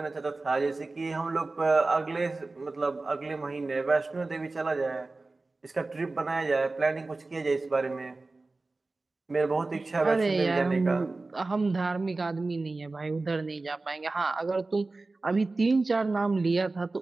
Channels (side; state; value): left; quieter; 3.4 dB